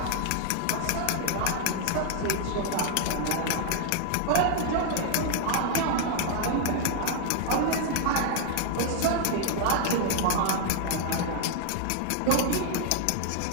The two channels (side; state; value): both; different; correlation 0.00